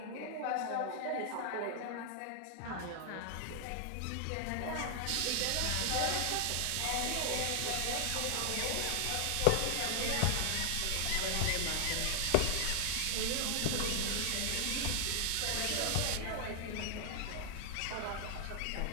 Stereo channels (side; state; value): both; different; correlation 0.00